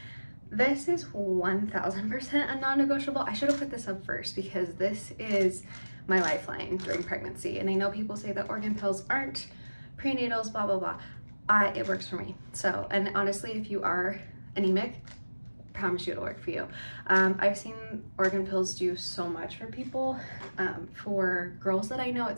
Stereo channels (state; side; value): inverted; both; correlation -1.00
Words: this is 1000% a non-negotiable. I should have put this up first because this is my lifeline during pregnancy. And I know people say that organ pills aren't prenatals, blah, blah, blah. It works for me. So, and honestly, if you are anemic, I promise you it'll work for you. I've seen organ pills do so much for people. For girls that I know,